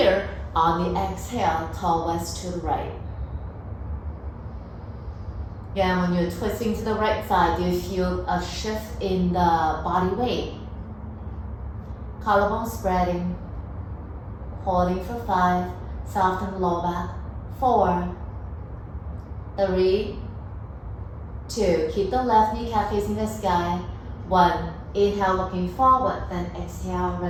On the exhale, twist to the right. Again, when you're twisting to the right side, do you feel a shift in the body weight? Collarbone spreading. Holding for 5. Soften the lower back. 4, 3, 2. Keep the left kneecap facing the sky. 1. Inhale, looking forward, then exhale,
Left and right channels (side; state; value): both; identical; correlation 1.00